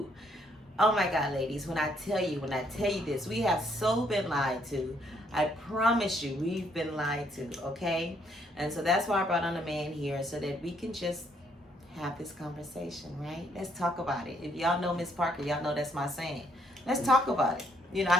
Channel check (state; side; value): normal; both; correlation 0.70